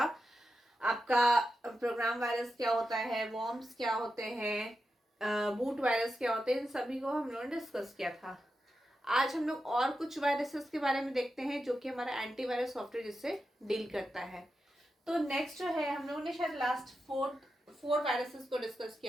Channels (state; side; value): normal; both; correlation 0.89